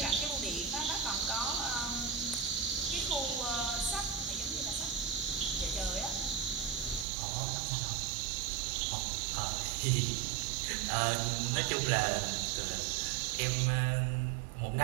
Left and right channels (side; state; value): left; drops out; at 7.1 s